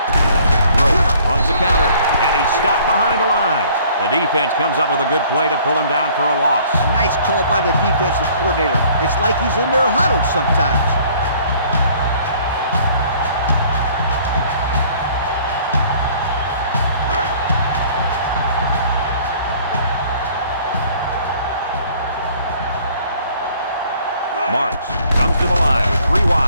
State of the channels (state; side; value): inverted; both; correlation -0.56